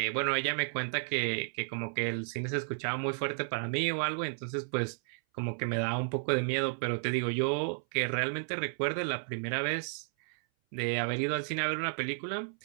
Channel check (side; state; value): left; silent; 56 dB below the other